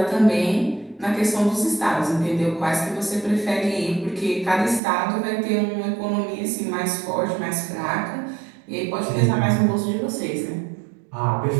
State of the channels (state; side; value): drops out; left; at 4.8 s